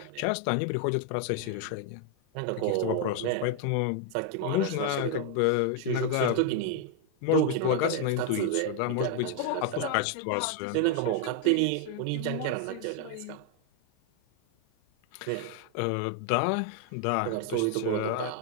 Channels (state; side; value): different; both; correlation 0.00